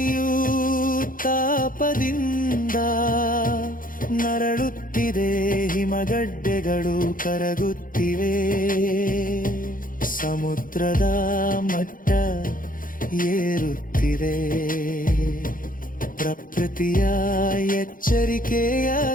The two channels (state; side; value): late; right; 0.40 ms